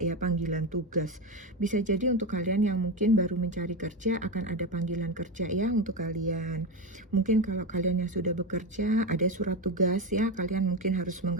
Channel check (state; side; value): normal; both; correlation 0.16